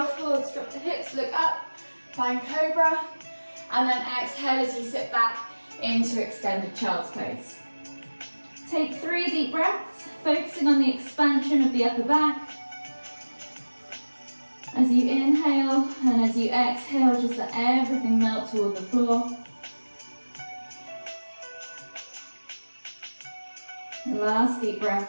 forwards, drop the hips, look up, find cobra. And then exhale as you sit back into extended child's pose. Take 3 deep breaths, focusing on the expansion of the upper back. As you inhale and as you exhale, just let everything melt toward the floor. Last deep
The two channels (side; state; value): both; inverted; correlation -1.00